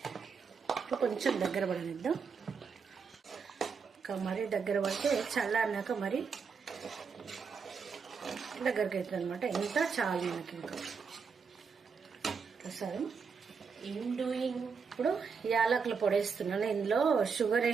కొంచెం దగ్గర పడనిద్దాం. ఇంకా మరీ దగ్గర పడితే చల్లారినాక మరి దగ్గరికి అవుతుంది అనమాట. ఇంత చాలు మనకి. ఇంకా ప్రసాదం ఇప్పుడు యాలకులు పొడి వేస్తున్నాను. ఇందులో షుగర్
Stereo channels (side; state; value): left; quieter; 5.6 dB